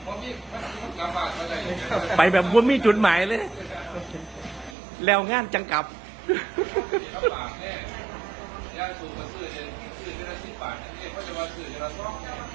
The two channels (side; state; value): left; drops out; at 4.8 s